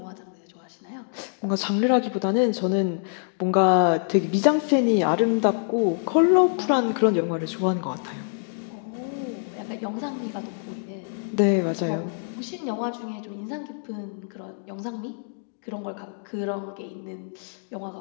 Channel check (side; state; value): right; silent; digital silence